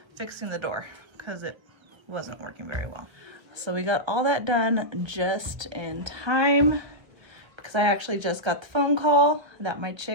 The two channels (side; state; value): left; late; 1.5 ms